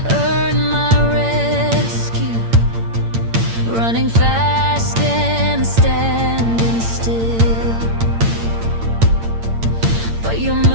earn my rescue, running fast and standing still. But your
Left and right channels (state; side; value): late; left; 8.8 ms